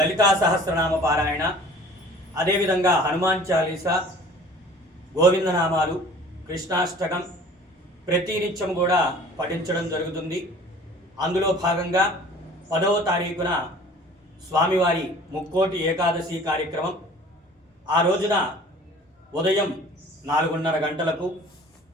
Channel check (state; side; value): normal; both; correlation 0.47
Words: సహస్రనామ పారాయణ, అదేవిధంగా హనుమాన్ చాలీసా, గోవిందనామాలు, కృష్ణాష్టకం ప్రతి నిత్యం కూడా పఠించడం జరుగుతుంది. అందులో భాగంగా 10వ తారీఖున స్వామివారి ముక్కోటి ఏకాదశి కార్యక్రమం. ఆ రోజున ఉదయం 4:30 గంటలకు